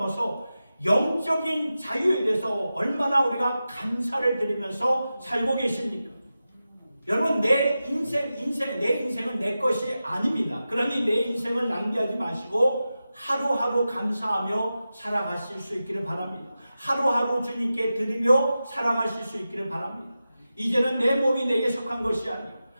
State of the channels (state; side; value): inverted; both; correlation -0.92